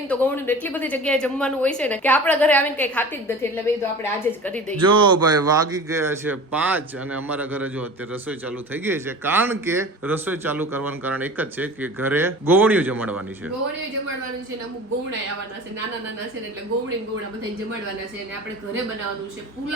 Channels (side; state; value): both; normal; correlation 0.38